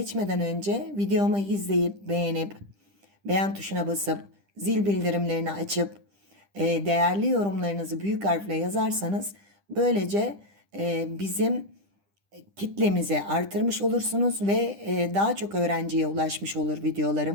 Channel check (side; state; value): left; late; 10 ms